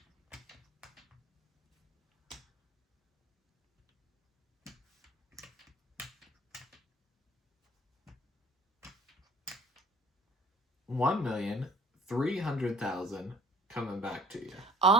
$1,300,000 coming back to you.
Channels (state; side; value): normal; both; correlation 0.53